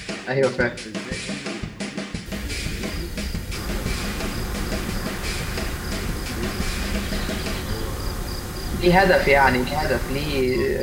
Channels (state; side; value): identical; both; correlation 1.00